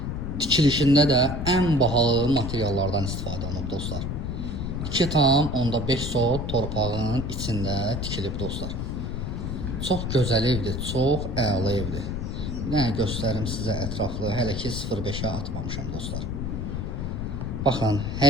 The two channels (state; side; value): noise; left; rumble, 4 dB below the sound